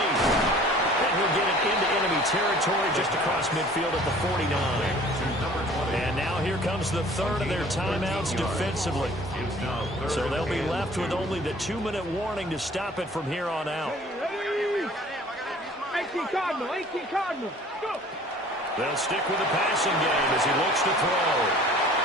And he'll get it into enemy territory just across midfield at the 49. And now here comes the 3rd of their timeouts defensively. So they'll be left with only the 2-minute warning to stop it from here on out. 18 Cardinal. Go. They'll stick with the passing game as he looks to throw.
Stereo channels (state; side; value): normal; both; correlation 0.50